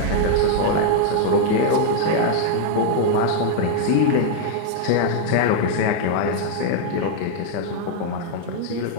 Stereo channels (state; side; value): different; both; correlation 0.00